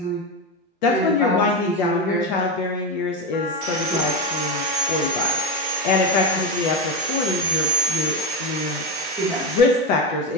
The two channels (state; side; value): normal; both; correlation 0.14